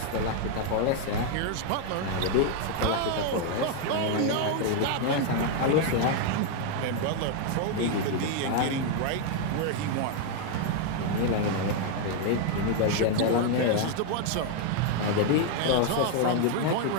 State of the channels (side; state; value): both; different; correlation 0.00